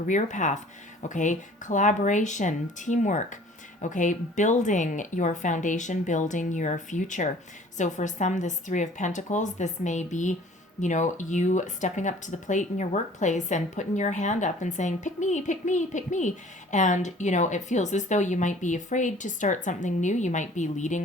path. Okay, collaboration, teamwork. Okay, building your foundation, building your future. So for some, this Three of Pentacles, this may be, you stepping up to the plate in your workplace and putting your hand up and saying, pick me, pick me, pick me. And, it feels as though you might be afraid to start something new. You might be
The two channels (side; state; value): both; normal; correlation 0.51